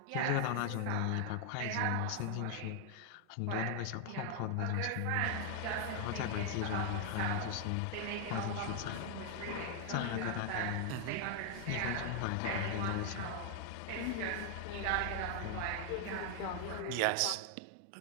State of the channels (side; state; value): both; different; correlation 0.00